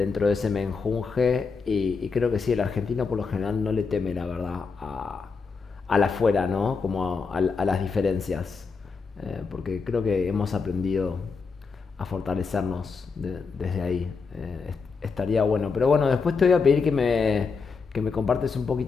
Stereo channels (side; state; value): right; quieter; 5.0 dB